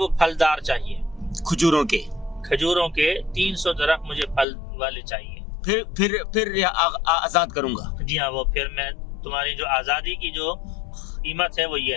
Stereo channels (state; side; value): drops out; right; at 4.5 s